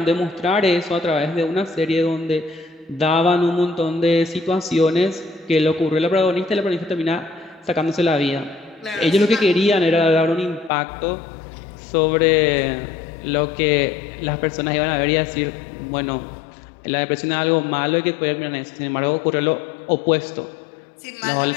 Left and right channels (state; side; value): drops out; right; at 10.7 s